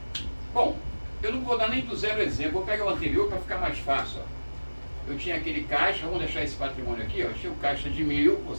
Bom, eu não vou dar nem do zero exemplo. Vou pegar o anterior para ficar mais fácil. Ó. Eu tinha aquele caixa, vamos deixar esse patrimônio aqui, ó. Eu tinha um caixa de 1.000,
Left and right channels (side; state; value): both; inverted; correlation -1.00